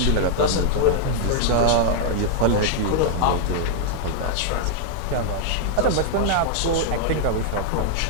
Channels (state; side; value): different; both; correlation 0.00